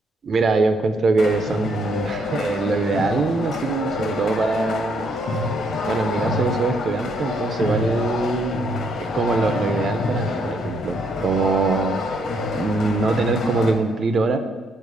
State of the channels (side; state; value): both; normal; correlation 0.72